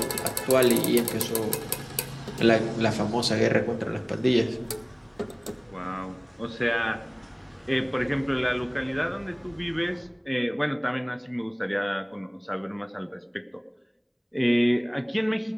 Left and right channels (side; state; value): both; identical; correlation 1.00